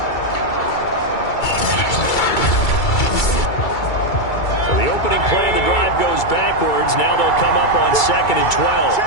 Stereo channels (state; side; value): late; right; 2.3 ms